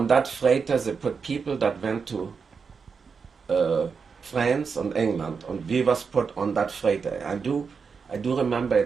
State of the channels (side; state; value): left; quieter; 5.6 dB